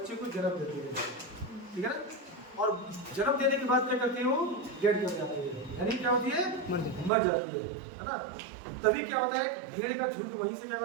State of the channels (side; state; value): left; drops out; at 7.1 s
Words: को जन्म देती है। ठीक है ना, और जन्म देने के बाद क्या करती है, वो डेड कर जाती है, यानी क्या होती है, मर जाती है ना। तभी क्या होता है, एक भेड़ का झुंड वहीं से क्या